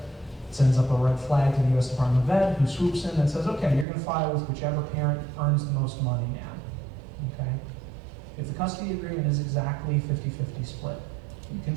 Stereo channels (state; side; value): drops out; left; at 3.9 s